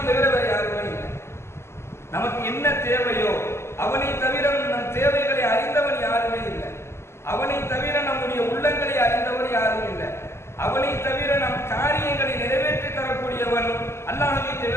தவிர வேறு யாருமே இல்லை. நமக்கு என்ன தேவையோ அவனை தவிர நம் தேவைகளை அறிந்தவன் யாருமே இல்லை. அவனை தவிர நம்முடைய உள்ளங்களை அறிந்தவர் யாரும் இல்லை. அவனை தவிர நம் காரியங்களை நிறைவேற்றி தரக்கூடியவன் அல்லாஹ்வை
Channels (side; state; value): right; late; 0.13 ms